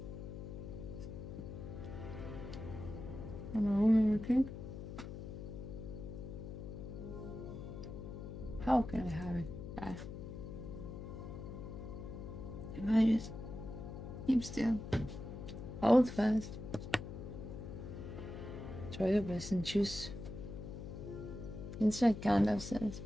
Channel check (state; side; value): noise; left; hum, 8 dB below the sound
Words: I'm a woman with cake. How can I have it bad? If I just keep still, hold fast, try your best and choose. It's like Gandalf says.